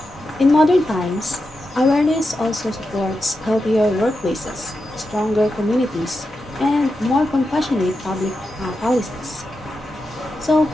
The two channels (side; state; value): both; normal; correlation 0.89